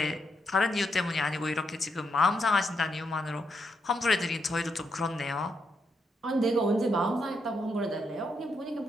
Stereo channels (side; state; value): both; normal; correlation 0.80